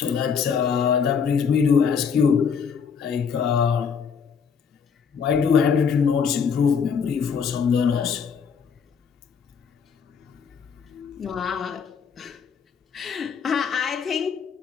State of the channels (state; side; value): quieter; right; 6.5 dB